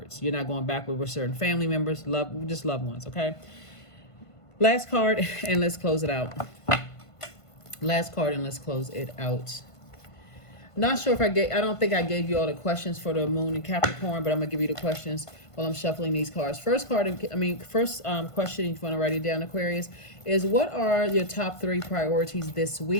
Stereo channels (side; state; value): right; late; 1.5 ms